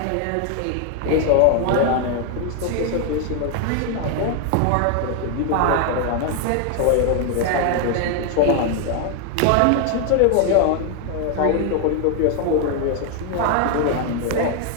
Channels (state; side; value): different; both; correlation 0.00